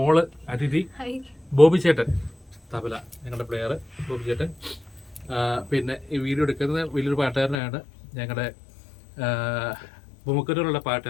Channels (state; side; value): drops out; right; at 7.6 s